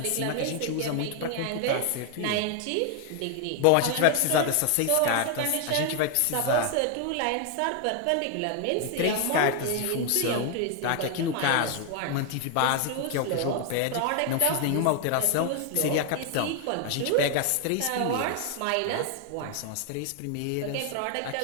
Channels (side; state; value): both; different; correlation 0.00